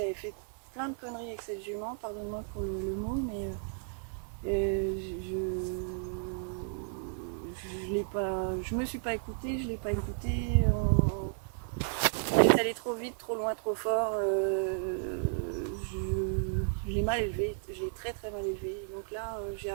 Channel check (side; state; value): left; silent; digital silence